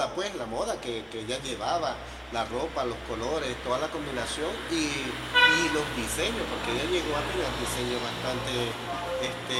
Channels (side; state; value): both; identical; correlation 1.00